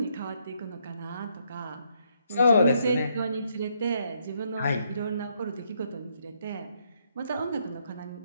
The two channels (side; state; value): both; inverted; correlation -0.74